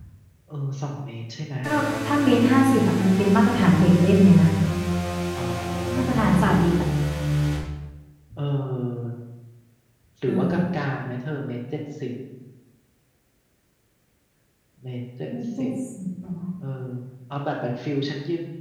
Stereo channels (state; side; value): identical; both; correlation 1.00